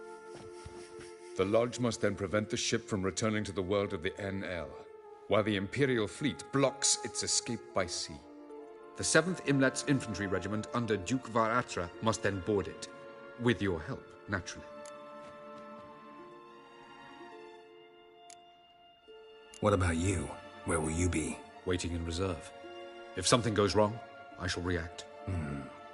The Lodge must then prevent the ship from returning to the world of the NL, while the Imperial fleet blocks its escape by sea. The 7th Imlet's Infantry Regiment under Duke Varatra must then board it. With your help, naturally. What about you? Where will you be? Waiting in reserve. If something goes wrong, I shall react.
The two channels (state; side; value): identical; both; correlation 1.00